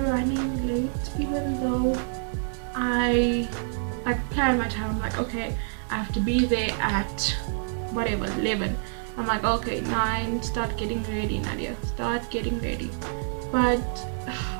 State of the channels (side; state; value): left; silent; digital silence